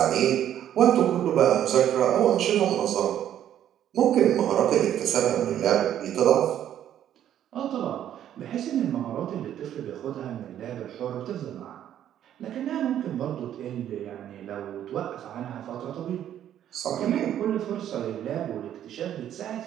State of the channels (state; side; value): quieter; left; 10.8 dB